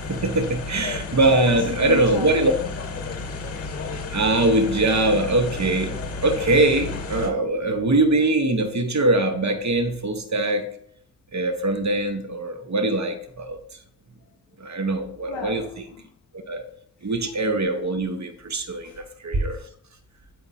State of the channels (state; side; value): normal; both; correlation -0.07